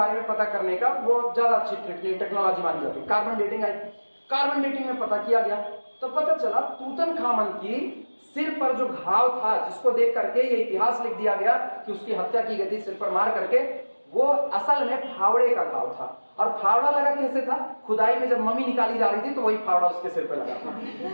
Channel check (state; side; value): inverted; both; correlation -1.00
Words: में पता करने का, वो ज्यादा अच्छी टेक्नोलॉजी मानी जाती है। कार्बन डेटिंग आई, कार्बन डेटिंग में पता किया गया तो पता चला तूतनखामन की सिर पर जो घाव था, जिसको देख करके ये इतिहास लिख दिया गया कि उसकी हत्या की गई थी सिर पर मार करके, वो असल में फावड़े का घाव था। और फावड़ा लगा कैसे था, खुदाई में जब मम्मी निकाली जा रही थी तो वही फावड़ा उसके सिर पर लगा